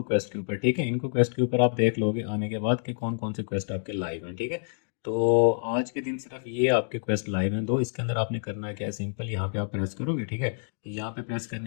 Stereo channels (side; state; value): right; silent; digital silence